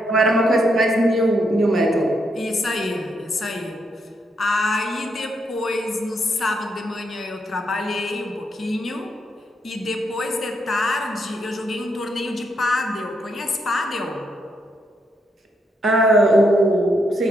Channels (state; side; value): normal; both; correlation 0.78